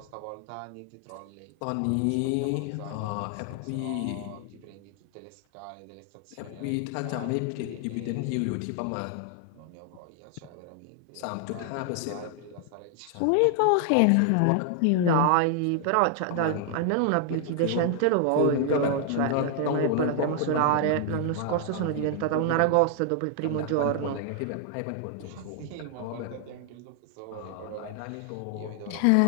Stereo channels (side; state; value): both; different; correlation 0.00